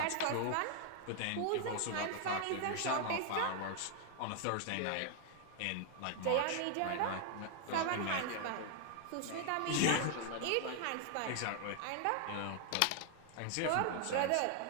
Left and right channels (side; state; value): both; different; correlation 0.00